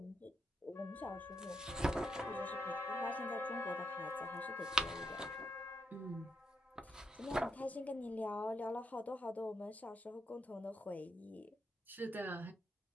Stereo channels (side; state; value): both; normal; correlation 0.80